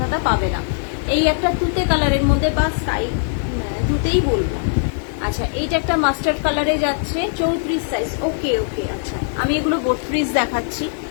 পাবে না। এই একটা তুতে কালারের মধ্যে, বা স্কাই তুতেই বলবো। আচ্ছা এইটা একটা মাস্টার্ড কালারে যাচ্ছে, 34 সাইজ। ওকে ওকে, আচ্ছা আমি এগুলো 32 দেখাচ্ছি।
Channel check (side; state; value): right; silent; 66 dB below the other